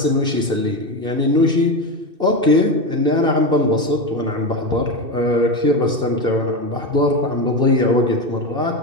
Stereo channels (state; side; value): late; left; 2.6 ms